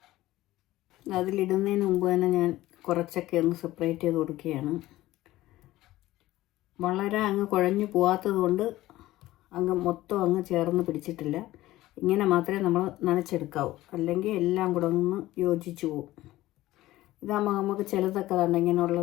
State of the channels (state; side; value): quieter; right; 16.4 dB